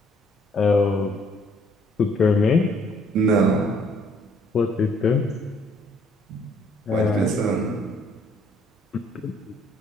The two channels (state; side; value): normal; both; correlation 0.63